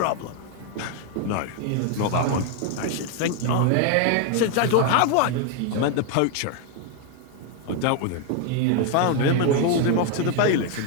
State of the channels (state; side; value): different; both; correlation 0.01